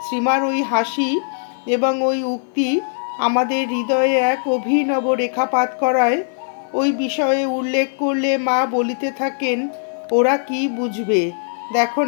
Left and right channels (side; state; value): right; silent; 57 dB below the other